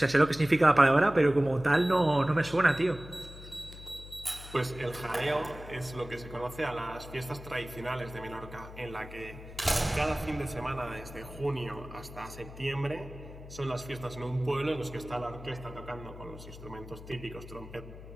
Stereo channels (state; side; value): noise; left; hum, 15 dB below the sound